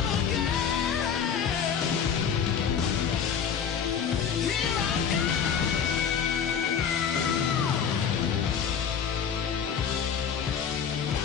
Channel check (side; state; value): right; quieter; 7.4 dB